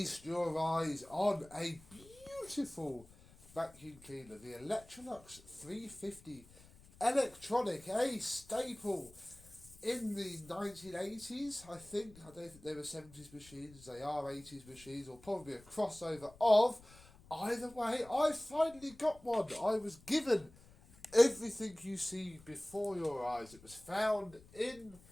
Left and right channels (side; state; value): left; noise; rumble, 23 dB below the sound